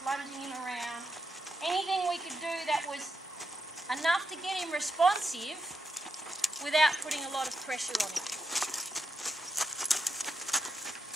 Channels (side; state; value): both; normal; correlation 0.85